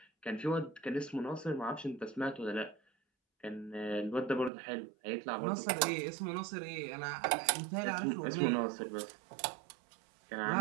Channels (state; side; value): drops out; left; at 4.5 s